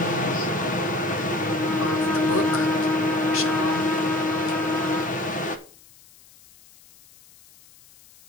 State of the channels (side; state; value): left; noise; hiss, 26 dB below the sound